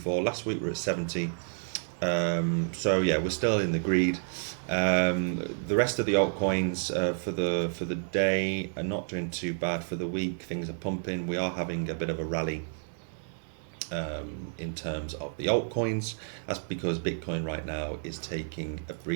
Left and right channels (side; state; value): left; silent; 58 dB below the other